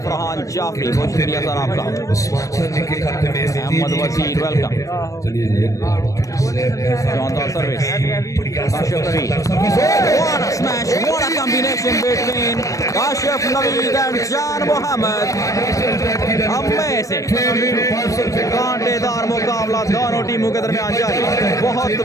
फरहान जाफरी बहुत शुक्रिया सर आपका। अहमद वजीर वेलकम। शानदार service, Kashif Naveed, what a smash, what a combination between Kashif Naveed and जान मोहम्मद। अमेजिंग कांटेदार मुकाबला दोनों टीमों के दरमियान जारी। बहुत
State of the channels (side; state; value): right; late; 0.16 ms